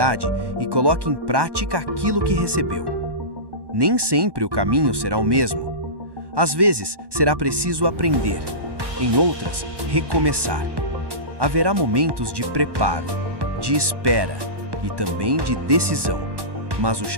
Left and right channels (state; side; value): late; left; 1.1 ms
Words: e coloca em prática aquilo que recebeu. Nem sempre o caminho será o mesmo. Às vezes, será preciso aprender. Em outras, recomeçar. Haverá momentos de preparo, de espera e também de decisão. Mas o